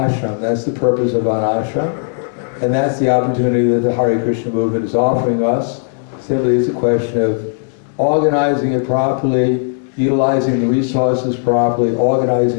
That's the purpose of Varnashram. And that's the opportunity that the Hare Krishna movement is offering us. Simply it's a question of organizing it properly, utilizing the resources properly,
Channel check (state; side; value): silent; right; digital silence